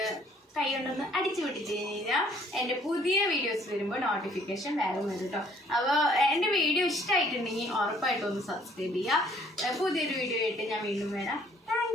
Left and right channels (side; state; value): both; normal; correlation 0.61